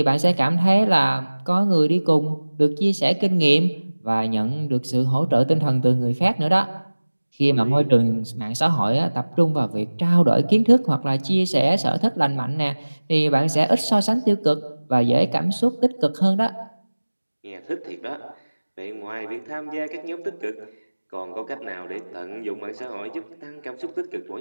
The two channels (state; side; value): inverted; both; correlation -1.00